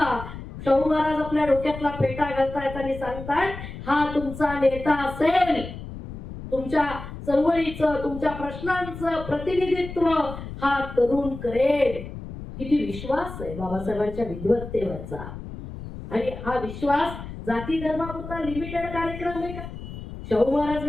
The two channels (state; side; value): noise; left; rumble, 11 dB below the sound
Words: शाहू महाराज आपल्या डोक्यातला फेटा घालतायत आणि सांगतायत हा तुमचा नेता असेल, तुमच्या चळवळीचं, तुमच्या प्रश्नांचं प्रतिनिधित्व हा तरुण करेल. किती विश्वास आहे बाबासाहेबांच्या विद्वत्तेवरचा. आणि हा विश्वास जाती धर्मापुरता लिमिटेड कार्यक्रम आहे का? शाहू महाराज